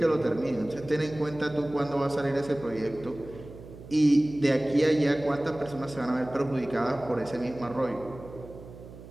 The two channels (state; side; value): noise; right; hum, 16 dB below the sound